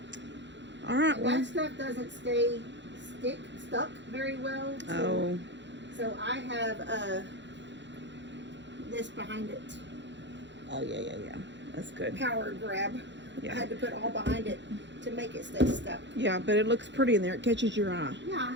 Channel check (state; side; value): late; left; 0.52 ms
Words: All right. And Well, that stuff doesn't stay stuck very well. So I have this behind it. Oh yeah. That's good. Power grab. Yeah. I had to put all behind it to make it stay stuck. Yeah, but it looks pretty in there. It catches your eye.